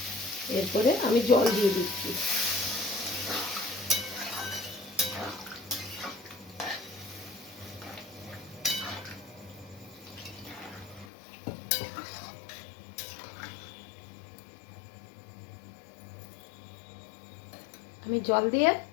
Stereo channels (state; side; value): drops out; right; at 11.1 s